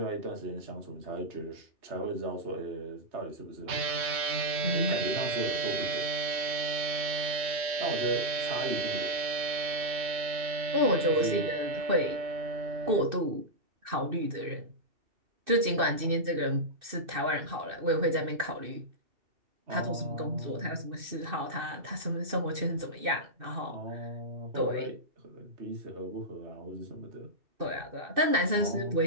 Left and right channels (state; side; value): late; left; 2.6 ms